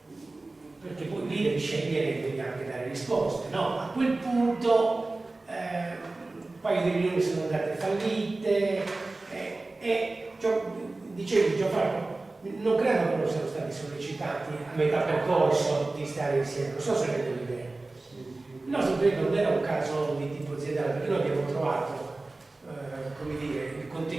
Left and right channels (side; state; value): left; quieter; 3.2 dB